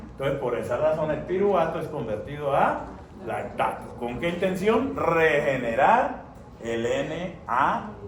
Entonces, por esa razón, el piruvato es convertido a lactato. ¿Con qué intención? Regenerar el NAD.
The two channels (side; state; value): both; identical; correlation 1.00